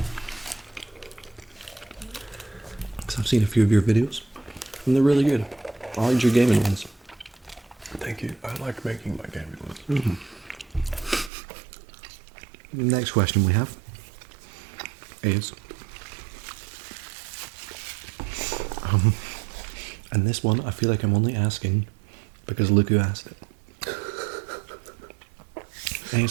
I've seen a few of your videos and they're really good. I like your gaming ones. Thank you. I like making my gaming ones. Next question we have is, and this one I feel like I'm only asking because look who asked it.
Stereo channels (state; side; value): drops out; left; at 11.3 s